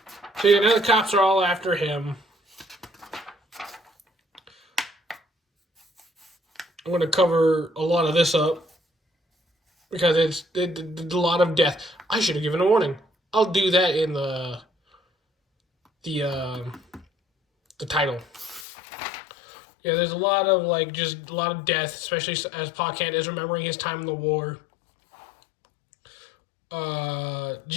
So now the cops are all after him. I'm going to cover a lot of this up because it's a lot of death. I should have given a warning. I'll do that in the title. Yeah, there's a lot of just a lot of death, especially as Pa Kent is remembering his time in the war.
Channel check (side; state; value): right; drops out; at 18.7 s